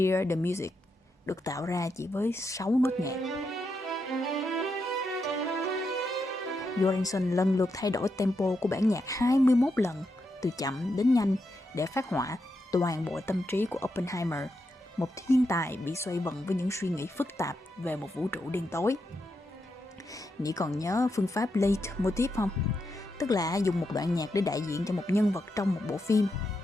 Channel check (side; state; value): both; normal; correlation 0.84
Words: the Music, được tạo ra chỉ với 6 nốt nhạc. Göransson lần lượt thay đổi tempo của bản nhạc 21 lần, từ chậm đến nhanh, để phát họa toàn bộ tâm trí của Oppenheimer, một thiên tài bị xoay vần với những suy nghĩ phức tạp về một vũ trụ đen tối. Nị còn nhớ phương pháp leitmotiv không? Tức là dùng một đoạn nhạc để đại diện cho một nhân vật trong một bộ phim.